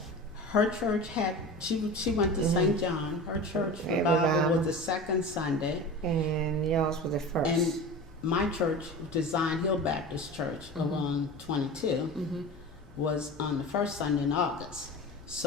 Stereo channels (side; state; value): both; normal; correlation 0.33